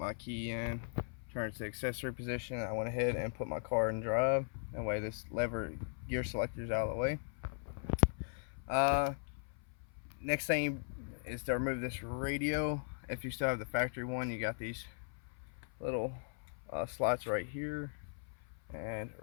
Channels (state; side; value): silent; right; 52 dB below the other